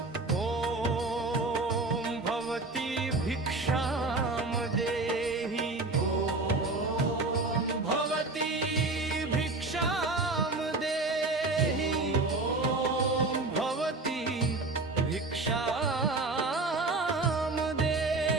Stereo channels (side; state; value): left; quieter; 3.3 dB